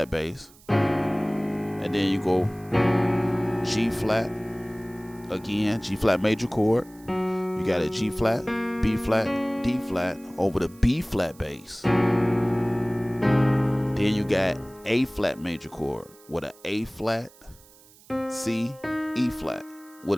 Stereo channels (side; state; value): right; noise; hiss, 25 dB below the sound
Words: bass, and then you go G flat again, G flat major chord. You got a G flat, B flat, D flat over the B flat bass. Then you got A flat major chord with an A flat, C, E flat